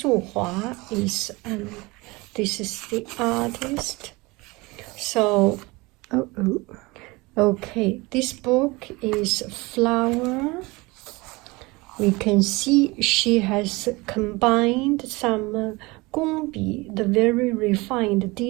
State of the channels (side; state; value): left; quieter; 23.7 dB